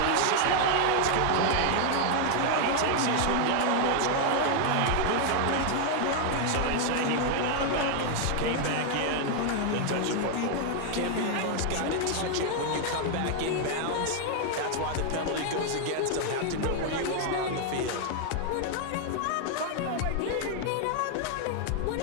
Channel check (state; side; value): different; both; correlation 0.00